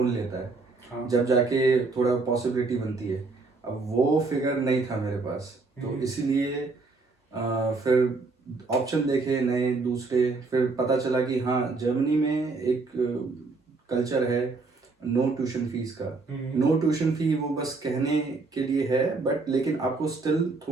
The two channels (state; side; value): quieter; left; 3.8 dB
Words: लेता है, हाँ। जब जाके थोड़ा पॉसिबिलिटी बनती है। अब वो फिगर नहीं था मेरे पास, तो इसीलिए फिर ऑप्शन देखे नए दूसरे। फिर पता चला कि हाँ, जर्मनी में एक कल्चर है नो ट्यूशन फीस का। नो ट्यूशन फी वो बस कहने के लिए है, बट लेकिन आपको स्टिल